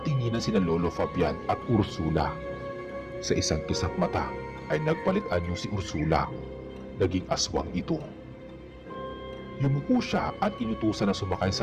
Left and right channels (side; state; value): both; identical; correlation 1.00